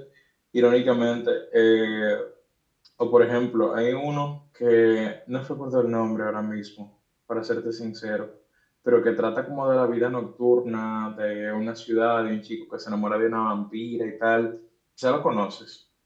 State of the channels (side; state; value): both; identical; correlation 1.00